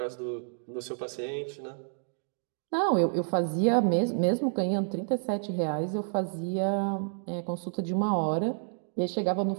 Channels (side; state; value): left; silent; digital silence